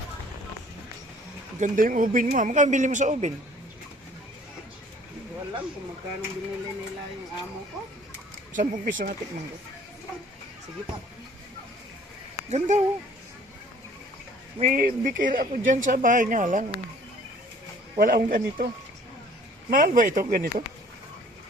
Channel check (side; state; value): both; normal; correlation 0.54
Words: Ganda yung ubin mo. Magkano bili mo sa ubin? Hindi ko alam kung magkano binili nila yung amo ko. 10 piso nga tikman ko. Sige pa. Ganda oh. May bikir ako dyan sa bahay nga lang. Wala akong ganito. Mahal ba ito ganito?